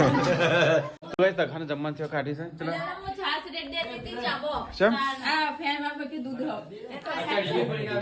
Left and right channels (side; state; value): both; identical; correlation 1.00